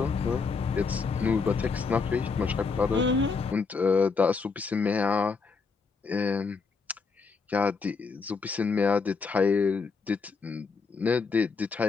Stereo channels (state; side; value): quieter; right; 4.8 dB